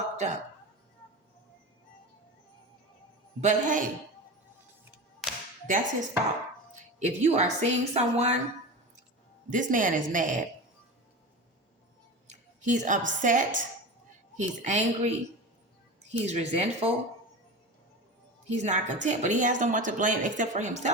up. But hey, that's his fault. If you are seeing someone, this man is mad. He's upset. He's angry. He's resentful. He's not content, but he has no one to blame except for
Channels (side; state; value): both; normal; correlation 0.28